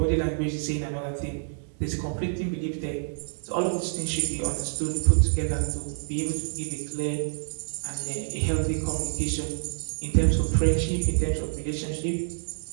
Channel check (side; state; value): left; silent; 60 dB below the other